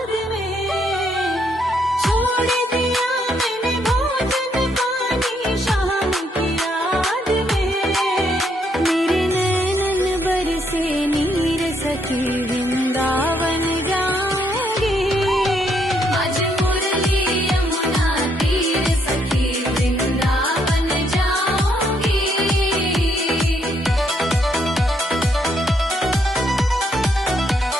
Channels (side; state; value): both; normal; correlation 0.73